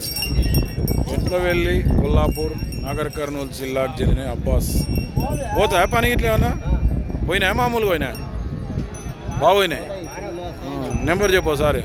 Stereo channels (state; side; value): identical; both; correlation 1.00